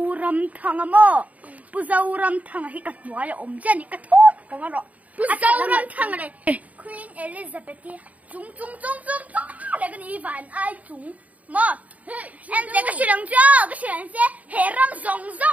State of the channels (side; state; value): left; late; 0.071 ms